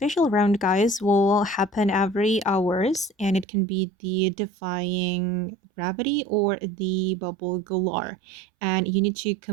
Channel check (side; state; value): left; drops out; at 3.5 s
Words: round, guys, will happen every hours, and it can be the Defying Gravity or the Bubble Galore. And you need to